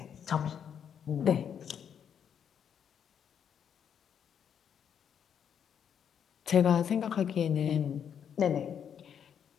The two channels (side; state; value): right; quieter; 8.2 dB